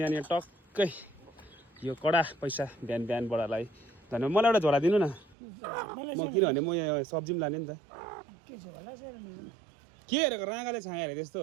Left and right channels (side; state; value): left; drops out; at 5.4 s